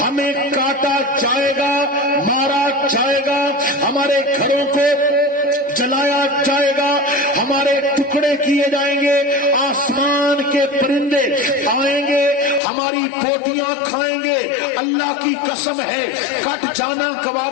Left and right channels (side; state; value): right; drops out; at 12.6 s